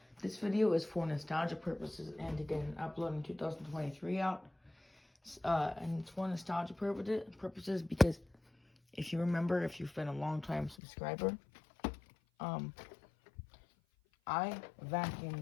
this video is for nostalgia purposes and to get an upload in 2023 out. And it's for nostalgia purposes because if you remember, if you've been a long time subscriber, I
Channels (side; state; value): right; drops out; at 10.8 s